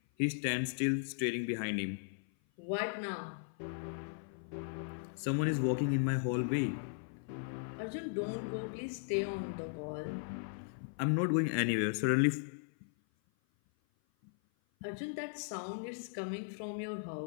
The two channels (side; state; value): right; silent; 53 dB below the other